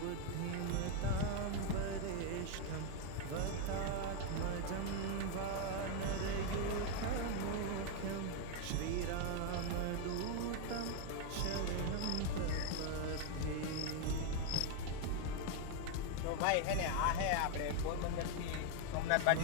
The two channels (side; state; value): both; different; correlation 0.01